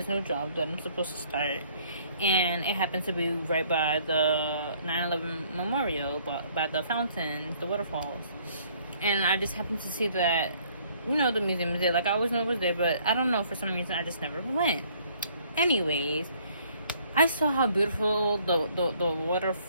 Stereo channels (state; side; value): inverted; both; correlation -0.61